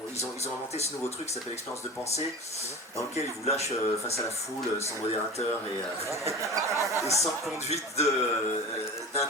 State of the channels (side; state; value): both; normal; correlation 0.34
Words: ils ont inventé ce nouveau truc qui s'appelle l'expérience de pensée, dans lequel ils vous lâchent face à la foule, sans modérateur et sans conduite